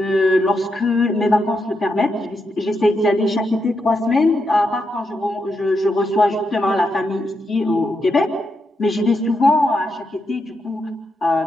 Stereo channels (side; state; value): both; normal; correlation 0.83